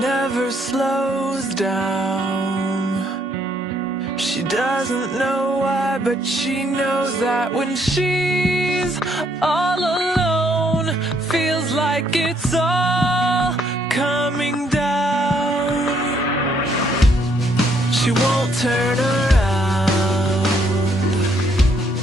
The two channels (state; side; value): normal; both; correlation 0.70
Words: slows down. She doesn't know why, but she knows that when she's all alone, feels like it's all coming down. She won't turn around.